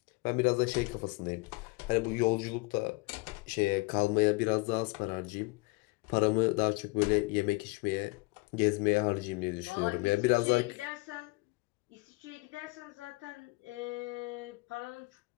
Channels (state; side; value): quieter; right; 25.9 dB